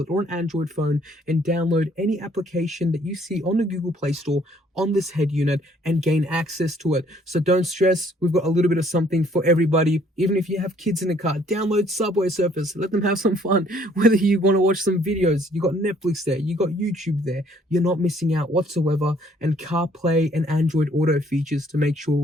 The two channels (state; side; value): normal; both; correlation 0.62